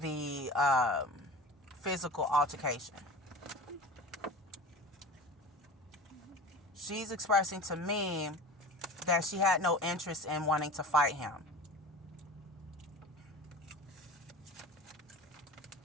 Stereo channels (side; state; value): both; normal; correlation 0.36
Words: the physical altercation. She's expressing to me that she had no interest in wanting to fight him.